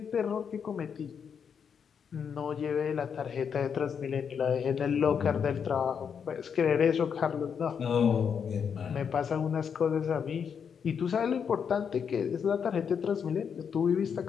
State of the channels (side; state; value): right; quieter; 7.0 dB